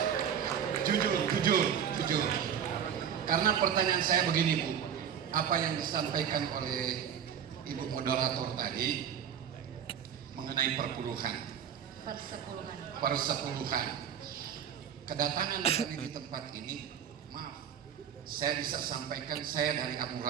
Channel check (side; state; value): left; quieter; 8.5 dB